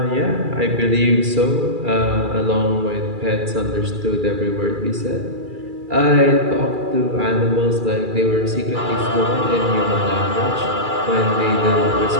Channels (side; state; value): left; late; 2.4 ms